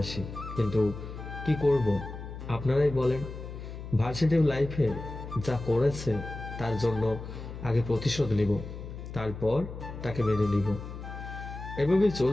কিন্তু কি করব আপনারাই বলেন। ভার্সিটি লাইফে যা করেছে তার জন্য আগে প্রতিশোধ নিব, তারপর তাকে মেনে নিব। এভাবেই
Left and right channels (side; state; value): left; noise; hum, 10 dB below the sound